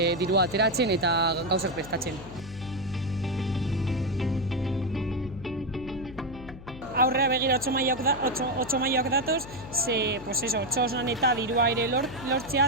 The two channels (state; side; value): noise; left; hum, 15 dB below the sound